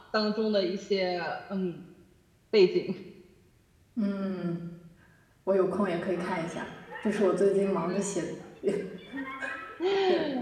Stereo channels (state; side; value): identical; both; correlation 1.00